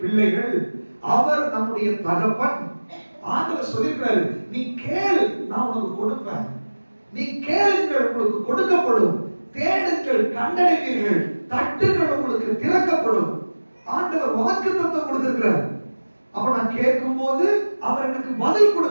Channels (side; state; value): both; inverted; correlation -1.00